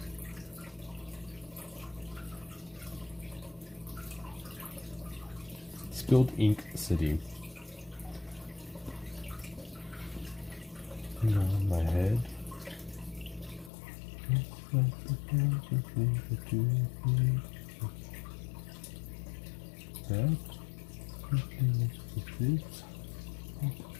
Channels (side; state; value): right; drops out; at 13.7 s